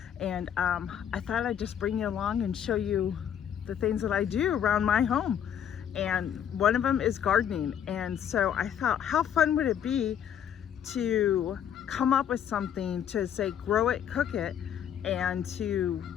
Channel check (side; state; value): right; quieter; 9.2 dB